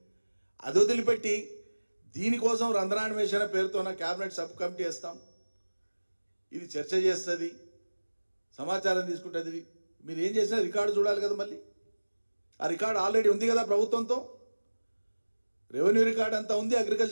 అది వదిలిపెట్టి దీనికోసం రంధ్రాన్వేషణ పేరుతో క్యాబినెట్ సబ్ కమిటీ వేస్తాం, ఇది చర్చ చేస్తుంది, సమాచారం తీసుకుంటుంది. మీరు ఏం చేసినా రికార్డు చూడాలి కదా. మళ్ళీ ఆ రికార్డు ఆల్రెడీ ఉంది కదా ప్రభుత్వంతో. రెవెన్యూ రికార్డ్ అంతా ఉంది,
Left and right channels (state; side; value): inverted; both; correlation -1.00